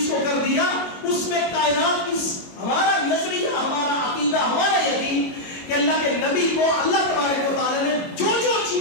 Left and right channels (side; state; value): right; late; 22 ms